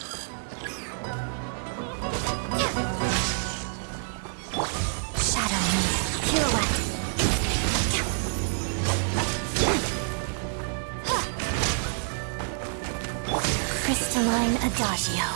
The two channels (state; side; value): silent; left; 60 dB below the other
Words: Shadow me. Pirouette. Crystalline Adagio.